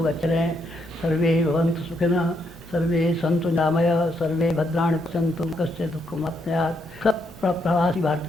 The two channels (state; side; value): noise; left; hum, 28 dB below the sound